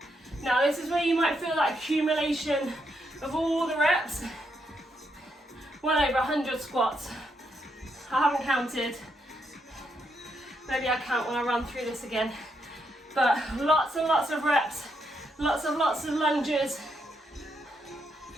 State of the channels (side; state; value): both; normal; correlation 0.79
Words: Now this is where you might feel that accumulation of all the reps. Well over 100 squats. I haven't counted. Maybe I count when I run through this again. But lots and lots of reps. Lots of lunges.